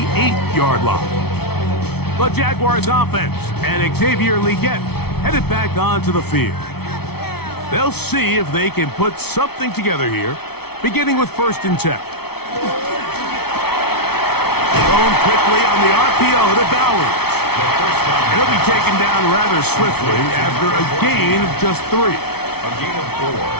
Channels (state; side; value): late; right; 0.96 ms